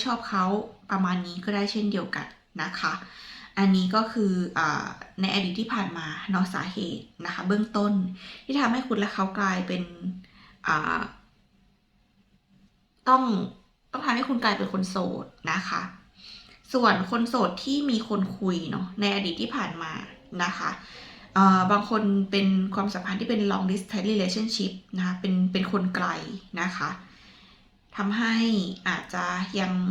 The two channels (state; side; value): identical; both; correlation 1.00